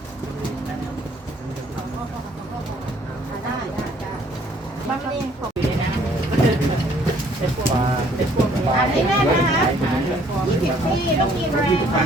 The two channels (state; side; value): normal; both; correlation 0.61